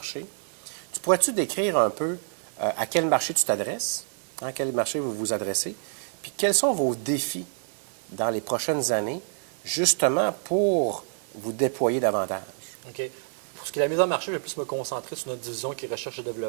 Tu pourrais-tu décrire un peu à quel marché tu t'adresses, à quel marché vous vous adressez, puis quels sont vos défis dans les prochaines années, justement pour vous déployer davantage? OK. Pour ce qui est de la mise en marché, je vais plus me concentrer sur notre division qui est recherche et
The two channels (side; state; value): left; silent; digital silence